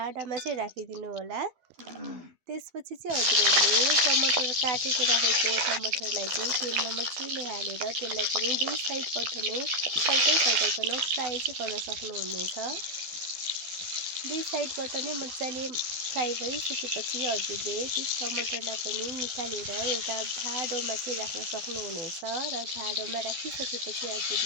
चाहिँ राखिदिनु होला। त्यसपछि चाहिँ हजुरहरूले टमाटर काटेर राखेको टमाटरलाई चाहिँ तेलमा मजाले हालेर त्यसलाई पनि दुई साइडबाट नै फर्काइकन फ्राई चाहिँ गर्न सक्नुहुनेछ। दुई साइडबाट नै मजाले फ्राई भइसकेपछि हजुरले त्यस टमाटरलाई पनि निकालेर एउटा भाँडोमा चाहिँ राख्न सक्नुहुनेछ र भाँडोमा राखिसकेपछि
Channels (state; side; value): late; left; 12 ms